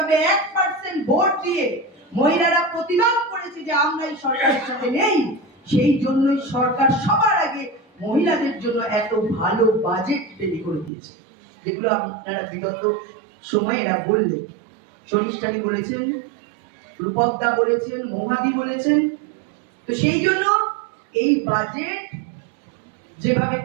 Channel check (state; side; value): drops out; left; at 10.9 s